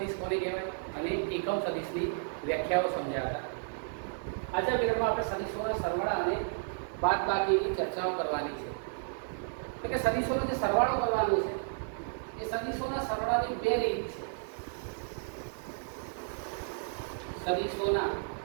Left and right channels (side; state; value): left; silent; digital silence